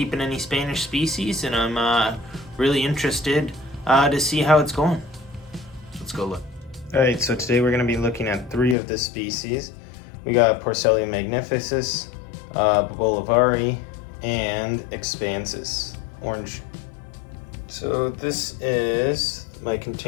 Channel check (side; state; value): right; drops out; at 8.8 s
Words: any Spanish species and I'm really interested to see how it's going. Let's go look. Alright, so today we're going to be looking at three of the species. We got Porcellum magnificus, Bolivari, and Expansus, orange. So this is my